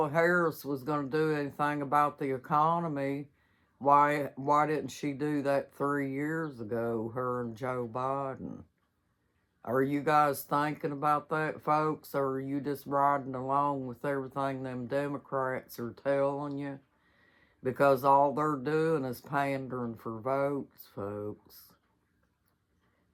Harris was going to do anything about the economy, why didn't she do that 3 years ago, her and Joe Biden? Are you guys thinking about that, folks, or are you just riding along with everything them Democrats are telling you? Because all they're doing is pandering for votes, folks.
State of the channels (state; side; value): identical; both; correlation 1.00